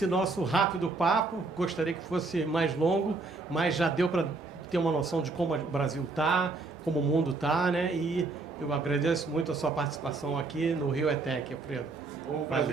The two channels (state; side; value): quieter; left; 3.7 dB